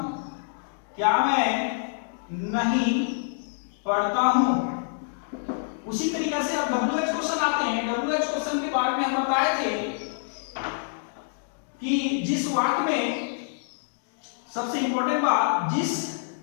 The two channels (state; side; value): silent; right; digital silence